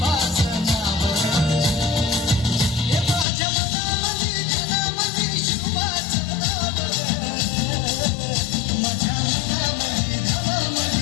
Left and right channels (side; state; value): right; drops out; at 3.2 s